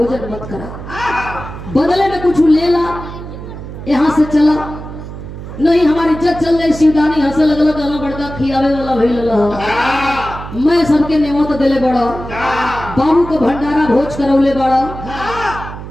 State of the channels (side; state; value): right; noise; hum, 11 dB below the sound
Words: मत करा, बदले में कुछ ले ला, यहाँ से चला, नहीं हमारी इज्जत चल जाए। शिवदानी हंसे लगल, कहला बड़का खियावे वाला भइल रहा, मैं सबके नेमत देले बड़ा, बाबू को भंडारा भोज करौले बड़ा,